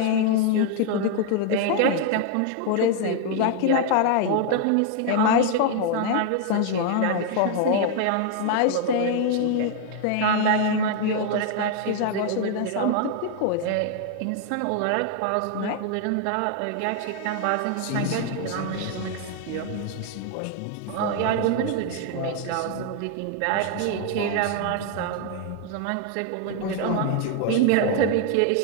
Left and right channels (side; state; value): both; different; correlation 0.00